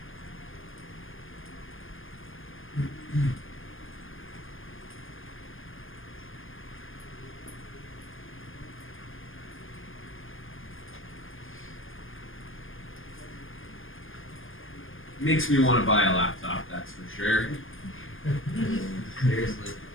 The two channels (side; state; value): right; late; 0.59 ms